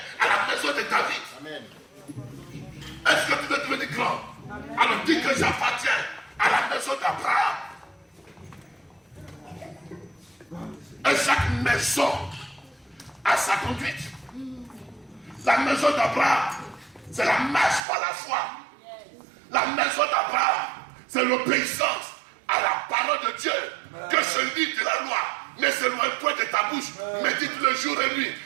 à la maison de David. Amen. Est-ce que tu veux devenir grand? Alors, dis que j'appartiens à la maison d'Abraham. Et chaque maison a sa conduite. La maison d'Abraham, c'est la marche par la foi. La maison d'Abraham, c'est l'obéissance à la parole de Dieu. Que ce livre de la loi ne s'éloigne point de ta bouche. Médite le jour et nuit,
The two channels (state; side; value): drops out; left; at 17.8 s